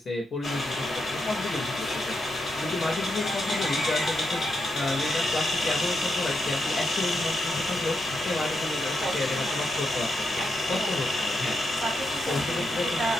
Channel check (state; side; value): normal; both; correlation 0.84